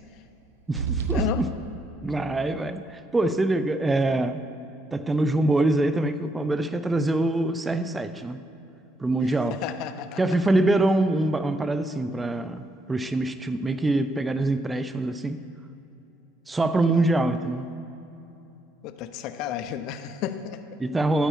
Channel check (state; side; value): normal; both; correlation 0.77